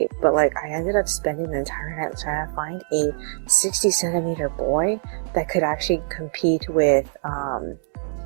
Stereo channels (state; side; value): silent; left; digital silence